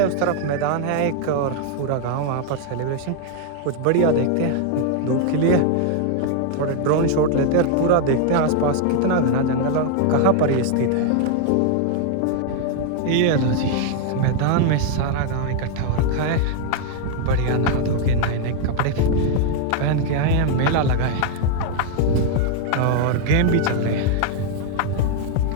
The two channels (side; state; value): both; different; correlation 0.00